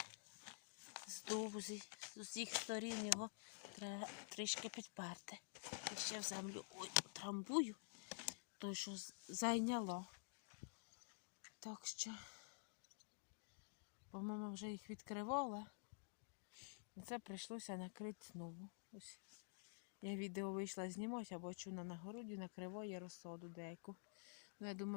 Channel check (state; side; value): silent; right; digital silence